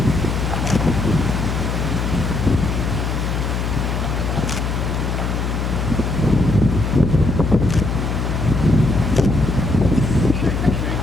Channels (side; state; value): left; noise; hum, 1 dB below the sound